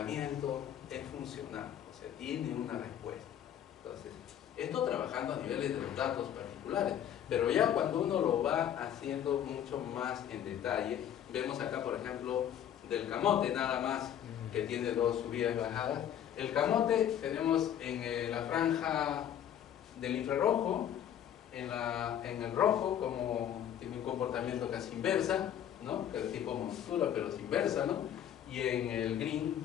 es funcional, o sea, tiene una respuesta. Entonces, esto trabajando a niveles de los datos particulares, pero ya cuando uno lo va haciendo mucho más en detalle, vemos acá, por ejemplo, del camote nada más, que tiene dos subidas y bajadas. El camote tenemos en la franja del infrarrojo, en el rojo, como tiene un comportamiento casi inversa, ¿no? Que es tipo montura, pero es inversa, ¿no? Y en el green,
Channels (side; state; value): right; quieter; 10.0 dB